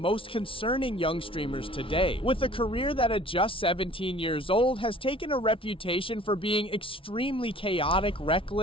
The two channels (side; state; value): right; late; 0.25 ms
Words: concerning young streamers today. With a career that at just 17 years old has taken a reputation for being extremely chaotic,